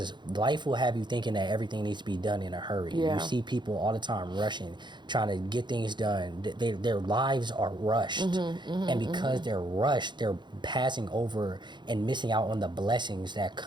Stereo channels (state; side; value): late; left; 0.22 ms